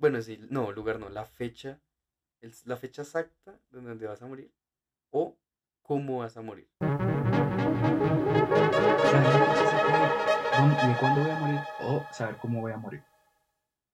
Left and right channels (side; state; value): both; identical; correlation 1.00